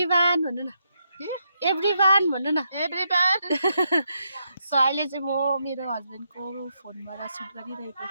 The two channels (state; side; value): inverted; both; correlation -0.80